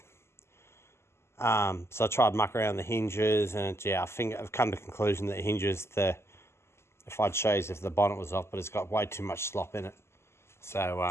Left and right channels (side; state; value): right; late; 0.12 ms